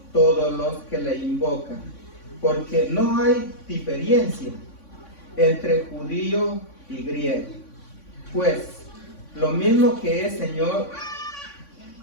todos los que le invocan. Porque no hay diferencia entre judío y griego. Pues lo mismo que es Señor,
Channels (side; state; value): right; late; 3.5 ms